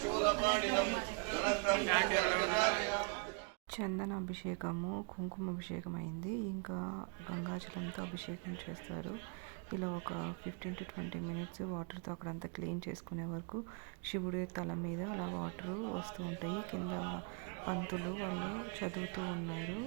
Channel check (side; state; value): left; quieter; 35.9 dB